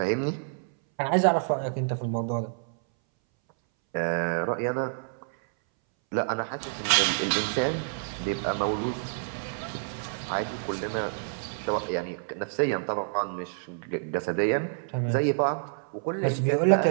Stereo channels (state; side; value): silent; left; 59 dB below the other